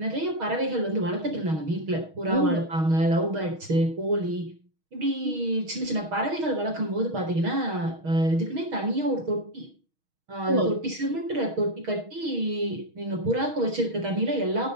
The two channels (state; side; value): late; left; 6.4 ms